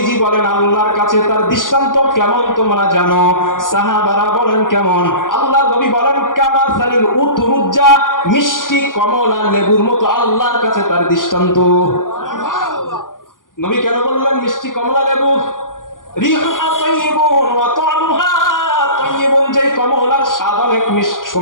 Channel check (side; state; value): right; late; 0.89 ms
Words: বলেন আল্লাহর কাছে তার দৃষ্টান্ত কেমন তোমরা জানো? সাহাবারা বলেন কেমন? আল্লাহর নবী বলেন কামাসালিল উতরুজ্জা, মিষ্টি কমলা লেবুর মতো আল্লাহর কাছে তার দৃষ্টান্ত। নবী কেন বললেন মিষ্টি কমলা লেবু? রিহুহা তাইয়িবুন ওয়া তা'মুহা তাইয়িবুন, যেই কমলার স্বাদ অনেক